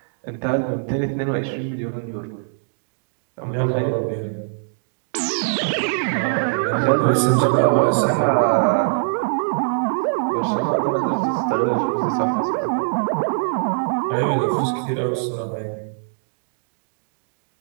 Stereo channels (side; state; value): left; silent; digital silence